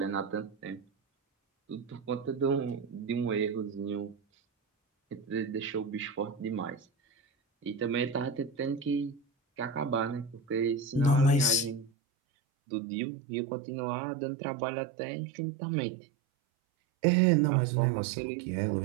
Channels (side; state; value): left; drops out; at 11.9 s